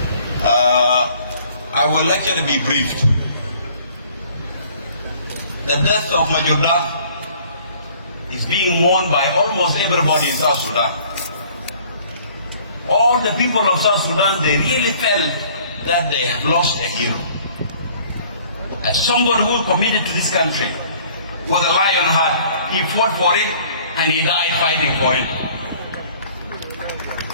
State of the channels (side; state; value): both; inverted; correlation -0.55